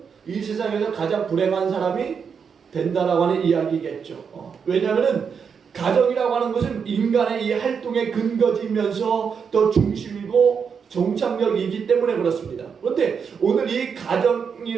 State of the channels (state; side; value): quieter; left; 6.4 dB